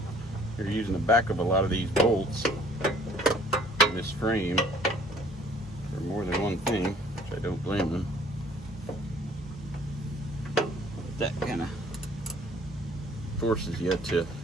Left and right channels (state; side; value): normal; both; correlation 0.56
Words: You're using the back of a lot of these bolts in this frame for more than one thing, which I don't blame them. That kind of forces you to